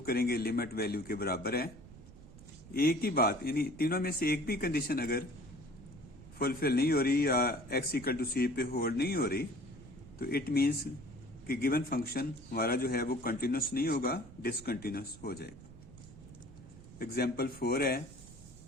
करेंगे लिमिट वैल्यू के बराबर है। एक ही बात, यानी तीनों में से एक भी कंडीशन अगर फुलफिल नहीं हो रही या x इक्वल टू c पे होल्ड नहीं हो रही तो इट मीन्स कि गिवन फंक्शन हमारा जो है वो कंटिन्यूस नहीं होगा, डिसकंटिन्यूस हो जाएगा। एग्जाम्पल 4 है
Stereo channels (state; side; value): noise; right; rumble, 18 dB below the sound